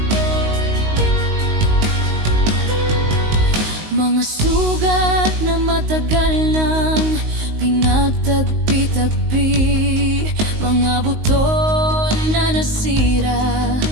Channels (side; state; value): left; late; 19 ms